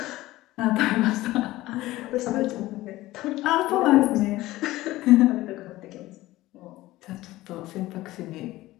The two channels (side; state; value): right; quieter; 17.3 dB